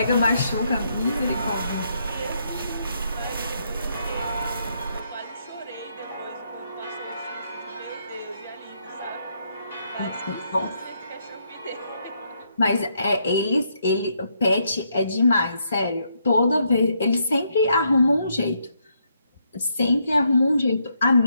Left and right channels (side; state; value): both; inverted; correlation -0.76